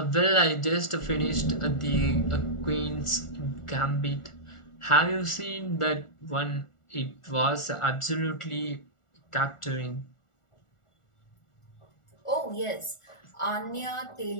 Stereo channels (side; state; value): right; late; 1.4 ms